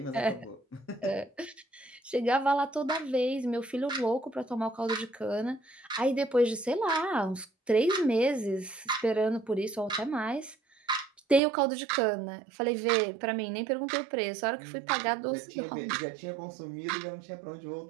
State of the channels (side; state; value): left; drops out; at 11.4 s